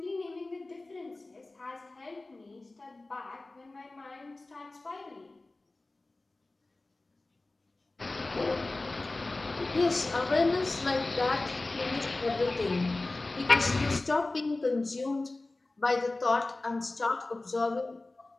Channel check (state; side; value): quieter; right; 3.1 dB